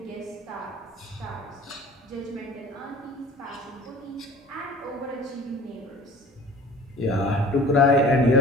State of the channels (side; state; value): both; normal; correlation 0.45